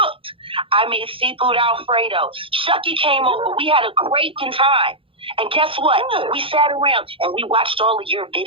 I made seafood Alfredo. Shucky came over. We had a great time. And guess what? Good. We sat around and we watched all of your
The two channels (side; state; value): left; late; 0.26 ms